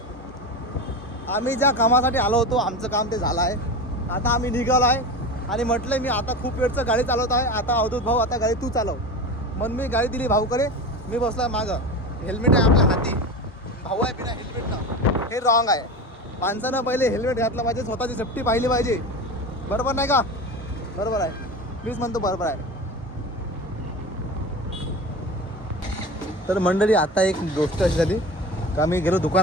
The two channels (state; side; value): normal; both; correlation 0.28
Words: आम्ही ज्या कामासाठी आलो होतो आमचं काम ते झालं आहे. आता आम्ही निघालो आहे आणि म्हटलं मी आता खूप वेळचं गाडी चालवत आहे. आता अवधूत भाऊ आता गाडी तू चालव. मग मी गाडी दिली भाऊकडे. मी बसला मागं. हेल्मेट आहे आपल्या हाती. भाऊ आहे बिना हेल्मेटनं. हे रॉंग आहे. माणसानं पहिले हेल्मेट घातलं पाहिजे, स्वतःची सेफ्टी पाहिली पाहिजे. बरोबर नाही का? बरोबर आहे. मीच म्हणतो बरोबर आहे. तर मंडळी, आता एक गोष्ट अशी झाली का मी गेलो